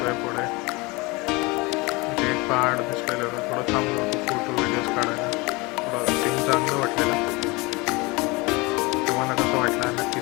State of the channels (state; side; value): quieter; right; 25.3 dB